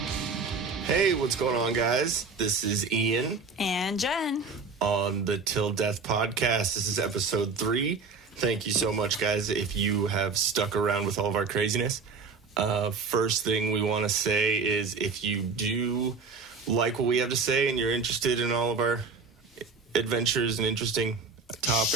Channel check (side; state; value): left; quieter; 4.7 dB